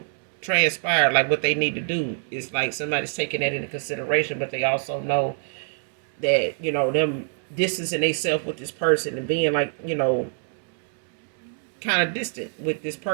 transpired, like what they need to do. It's like somebody's taking that into consideration, but they also know that, them distancing themselves with this person and being like, kind of distant with this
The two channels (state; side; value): silent; left; digital silence